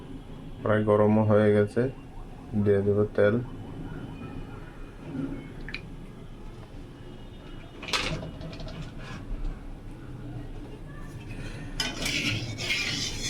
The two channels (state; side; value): identical; both; correlation 1.00